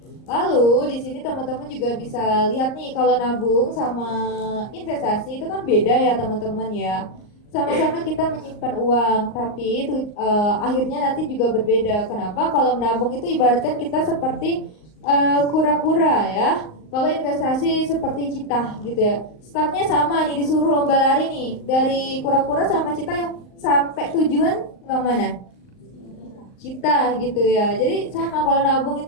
Lalu di sini teman-teman juga bisa lihat nih, kalau nabung sama investasi itu kan beda ya teman-teman ya. Sama-sama kita menyimpan uang, tapi itu akhirnya nanti juga berbeda. Kenapa? Kalau menabung itu ibaratkan kita seperti kura-kura ya. kalau investasi seperti Cita gitu ya, startnya sama nih, disuruh lomba lari nih dari Kura-Kura sama Cita, yang sampai tujuan yang mana? Cita gitu ya. Jadi sama, kalau nabung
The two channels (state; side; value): late; right; 38 ms